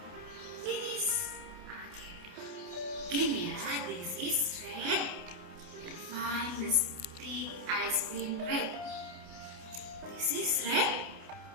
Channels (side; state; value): left; late; 28 ms